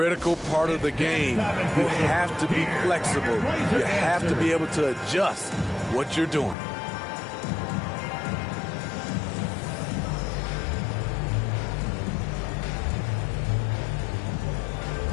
part of the game. You have to be flexible. You have to be able to adjust what you're doing.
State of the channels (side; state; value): right; drops out; at 6.6 s